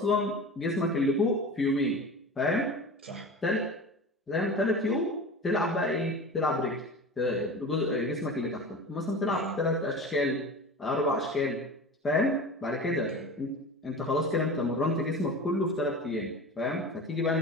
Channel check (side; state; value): both; normal; correlation 0.33